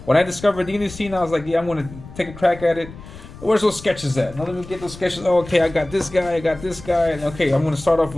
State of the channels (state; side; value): noise; left; rumble, 16 dB below the sound